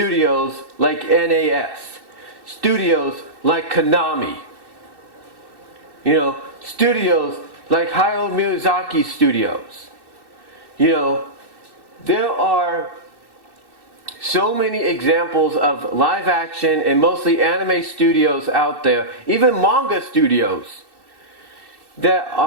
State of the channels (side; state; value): left; late; 2.7 ms